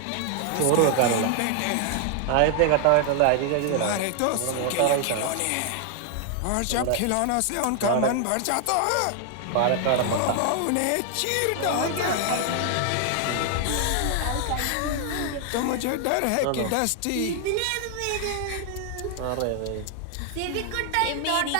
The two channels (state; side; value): different; both; correlation 0.00